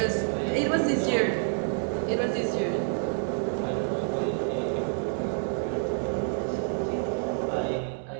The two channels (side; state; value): left; silent; digital silence